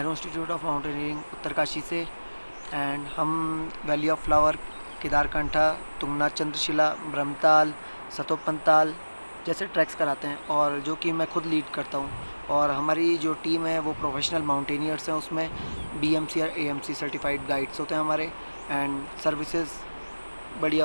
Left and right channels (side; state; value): both; inverted; correlation -1.00